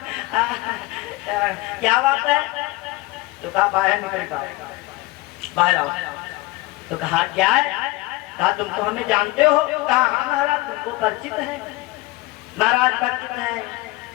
क्या बात है? तो कहा बाहर निकल का, बाहर आओ। तो कहा क्या है? कहा तुम तो हमें जानते हो? कहा हाँ महाराज तुमको परिचित है। महाराज परिचित है,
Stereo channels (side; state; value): right; quieter; 20.5 dB